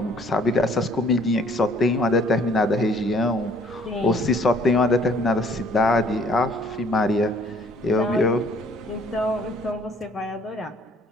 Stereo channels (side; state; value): both; normal; correlation 0.58